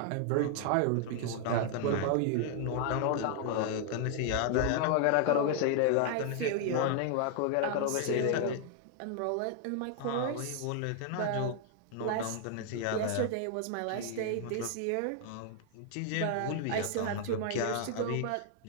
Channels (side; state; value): both; different; correlation 0.00